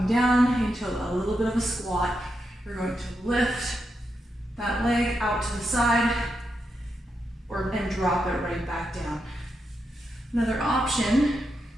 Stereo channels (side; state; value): both; normal; correlation 0.85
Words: down into a little bit of a squat. You're going to lift that leg out to the side and drop it right back down. Another option,